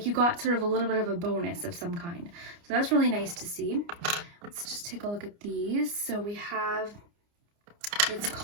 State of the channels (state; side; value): late; left; 29 ms